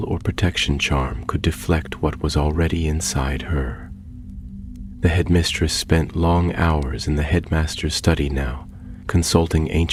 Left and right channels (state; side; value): identical; both; correlation 1.00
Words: or protection charm could deflect what was already inside her. The headmistress spent long hours in the headmaster's study now, consulting